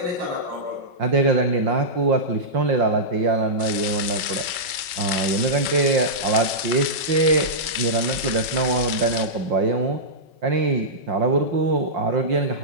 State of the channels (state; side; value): late; left; 5.2 ms